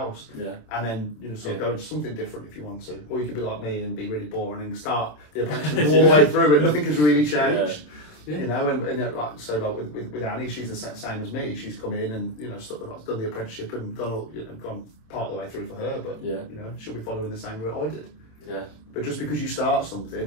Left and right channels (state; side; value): late; right; 27 ms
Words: and then sort of go into something different if you want to. Or you could be like me and be really boring and start the apprenticeship all the way through, and nothing has really changed. You know, and like with Annie, she's the same as me. She's come in and done the apprenticeship and gone part of the way through for her. But she'll be following the same route I did. Yeah. But just because you start